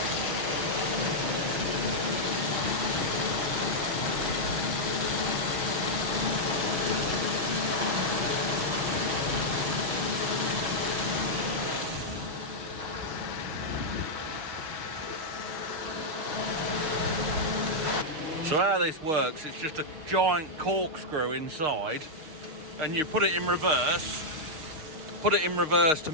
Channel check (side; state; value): left; late; 6.4 ms